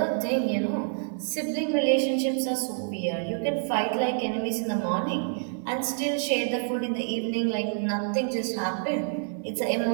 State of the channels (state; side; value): silent; left; digital silence